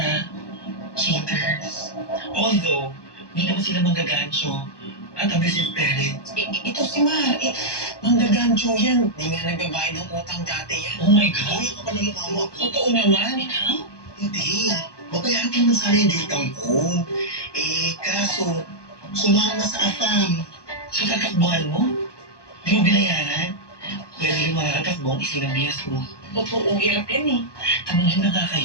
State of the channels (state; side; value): late; right; 1.2 ms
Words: cheaters. Although, hindi naman sila manggagancho at abusive parents. Ito si Mar, manggagancho yan. Di nga nagbabayad ng utang dati yan. Oh my God. Uy, ako pa ng mukha mo. Totoo naman. Ikaw? Hindi. Babayaran ko naman sana yung utang ko. Kaso, sumama sa afam. So, tatakbuhan mo? Di mo binayaran? Pwede yung mga katakbong isinabihas mo. Totoo, hirap yan eh. Tumingin na nga